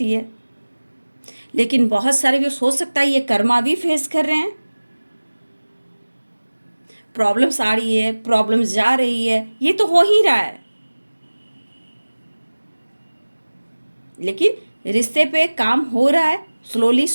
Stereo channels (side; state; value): both; inverted; correlation -1.00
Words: है, लेकिन बहुत सारे व्यूअर्स हो सकता है ये कर्मा भी फेस कर रहे हैं, प्रॉब्लम्स आ रही है, प्रॉब्लम्स जा रही है, ये तो हो ही रहा है, लेकिन रिश्ते पे काम हो रहा है, स्लोली